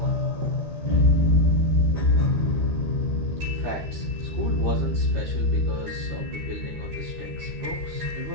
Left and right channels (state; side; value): late; left; 13 ms